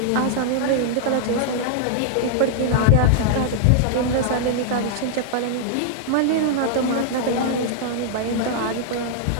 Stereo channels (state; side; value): different; both; correlation -0.01